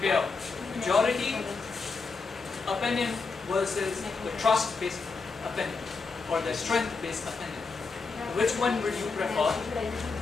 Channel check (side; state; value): right; quieter; 4.4 dB